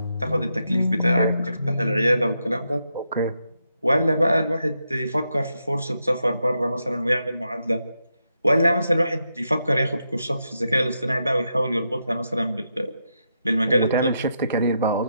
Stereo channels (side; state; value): both; inverted; correlation -0.83